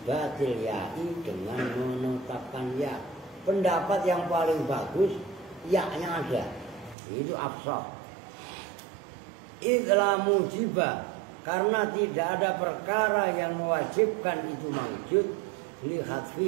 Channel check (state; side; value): drops out; left; at 7.0 s